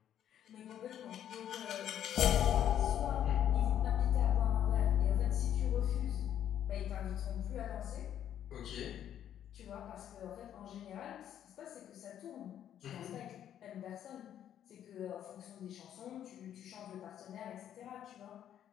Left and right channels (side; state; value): right; quieter; 10.3 dB